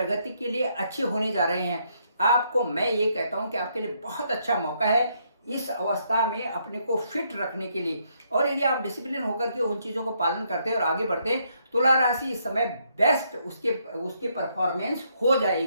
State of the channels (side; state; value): both; inverted; correlation -0.73